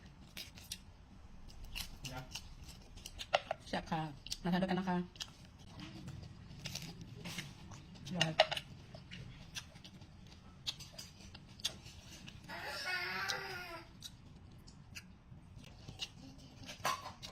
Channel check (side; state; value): both; identical; correlation 1.00